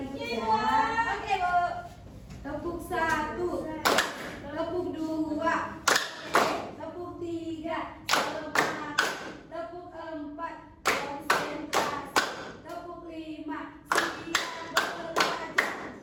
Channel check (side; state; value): both; identical; correlation 1.00